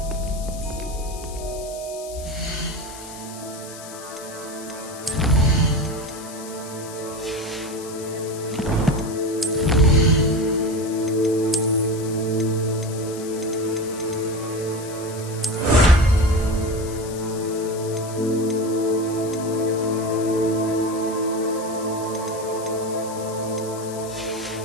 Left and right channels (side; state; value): left; noise; hiss, 14 dB below the sound